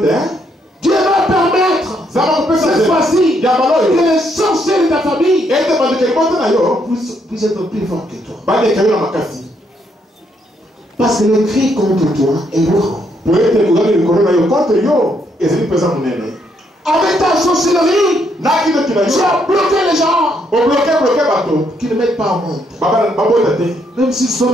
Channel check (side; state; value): both; normal; correlation 0.73